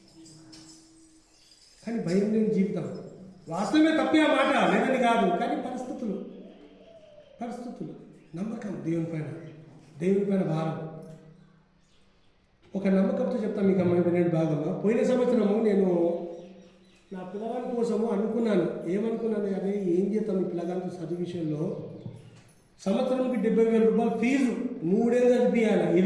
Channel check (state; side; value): identical; both; correlation 1.00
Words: కానీ భయం లేని జీవితం వాస్తవమే, తప్పే ఆ మాట లేదని కాదు, కానీ పరిస్థితులు నమ్మకం దేవుని పైన భారం. ఒక నమ్మకంతో చెప్తాను మీకు అమ్మాయి వినండి బాగమ్మా. పోయిన సంవత్సరము నేను నా పిల్లగాని కోసము అనుకున్నాను. ఏమనుకున్నాను? అదే ఏం చేస్తాం ఈ పిల్లగానితో చదువు విషయంలో. సంవత్సరానికి 70,000 రూపాయలు ఫీజు, 3 ఏళ్ళు చదివియాలి.